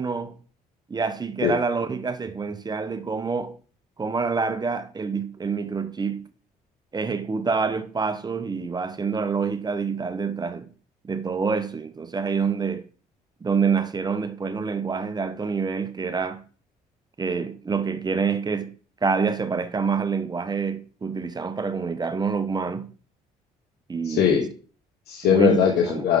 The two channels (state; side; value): normal; both; correlation 0.53